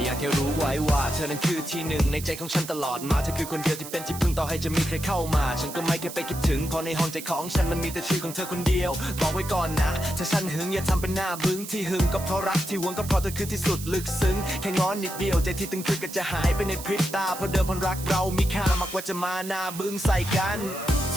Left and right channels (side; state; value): right; noise; hiss, 11 dB below the sound